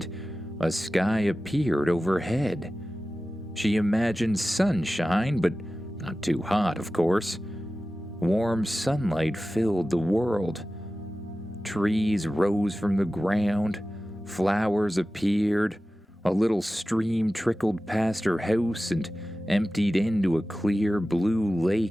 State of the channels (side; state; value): both; normal; correlation 0.95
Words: a sky appeared overhead. She imagined sunshine, but not too hot, of course. Warm sunlight filled the world. Trees rose from the ground. Flowers appeared. A little stream trickled past her house and emptied into a clear blue